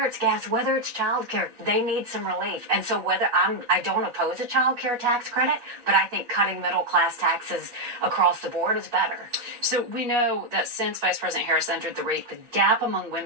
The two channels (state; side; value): late; left; 8.2 ms